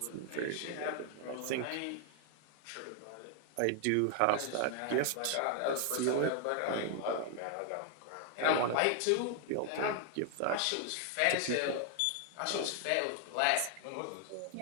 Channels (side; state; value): both; different; correlation 0.00